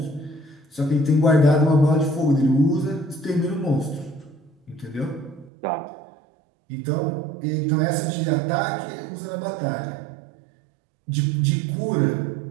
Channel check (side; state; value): left; drops out; at 5.5 s